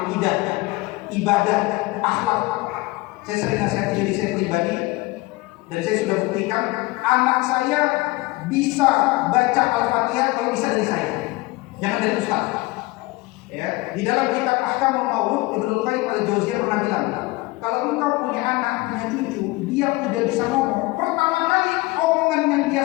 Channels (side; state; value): right; quieter; 22.0 dB